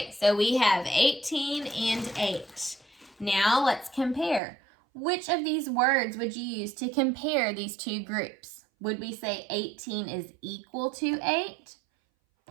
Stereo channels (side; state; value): left; drops out; at 4.4 s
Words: so we have 18 and 8. Now let's compare. Which of these words would you use to compare these two groups? Would we say 18 is equal to 8,